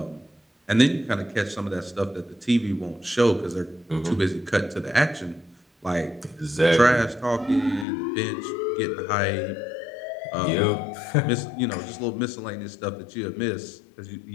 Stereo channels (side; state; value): right; drops out; at 7.9 s